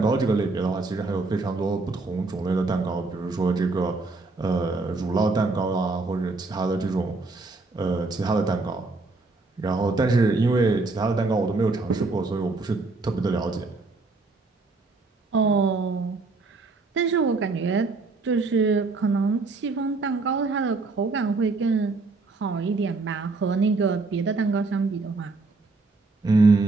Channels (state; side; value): quieter; left; 3.7 dB